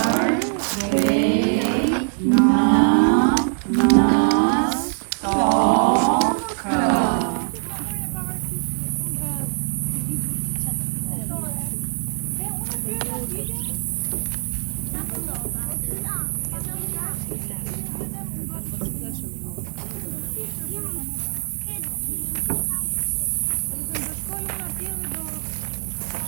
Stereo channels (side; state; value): left; silent; digital silence